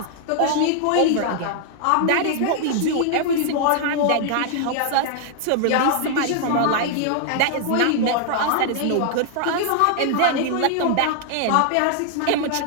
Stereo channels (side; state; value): both; different; correlation 0.00